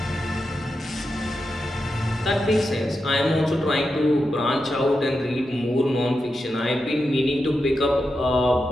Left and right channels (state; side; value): normal; both; correlation 0.88